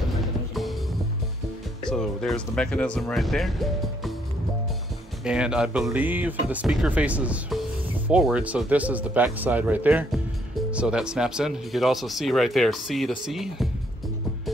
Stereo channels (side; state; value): both; normal; correlation 0.70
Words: So there's the mechanism right there. And I believe the speaker faces forward, so this is the back side right there. So that snaps in. You could also see right there, C to C.